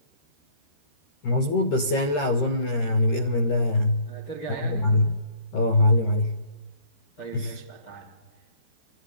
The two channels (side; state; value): right; late; 13 ms